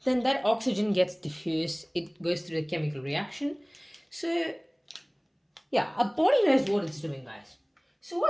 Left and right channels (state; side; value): identical; both; correlation 1.00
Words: then that oxygen gets diffused, it goes through the chemical reaction. So, yeah, our body knows what it's doing, guys. So,